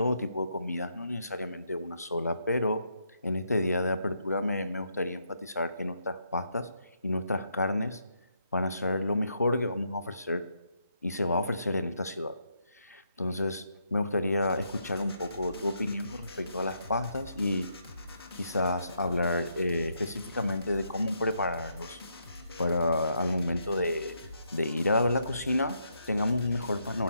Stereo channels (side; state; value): both; inverted; correlation -0.77